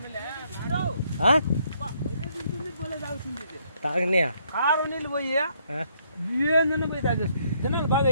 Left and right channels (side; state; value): both; inverted; correlation -0.70